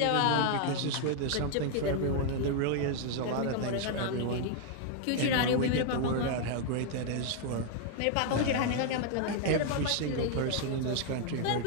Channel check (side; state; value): both; different; correlation 0.00